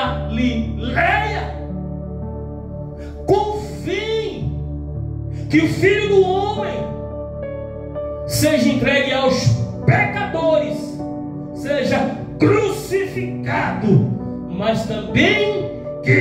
convém que o Filho do Homem seja entregue aos pecadores, seja crucificado, mas também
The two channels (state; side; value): identical; both; correlation 1.00